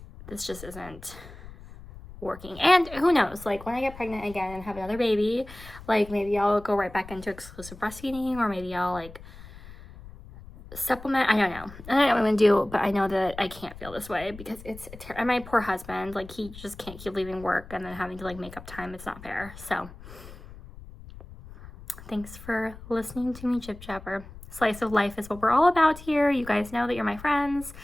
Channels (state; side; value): noise; left; rumble, 16 dB below the sound